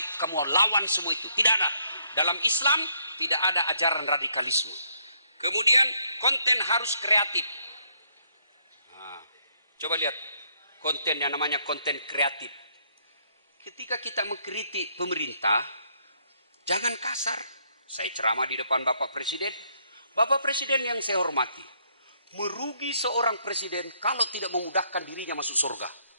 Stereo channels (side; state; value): both; inverted; correlation -0.71